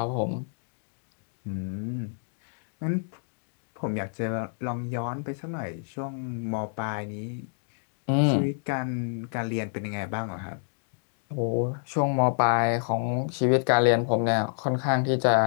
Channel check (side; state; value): right; silent; digital silence